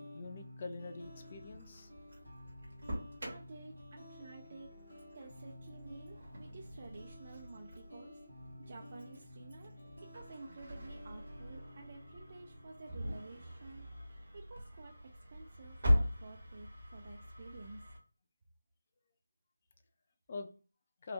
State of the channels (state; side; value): inverted; both; correlation -0.95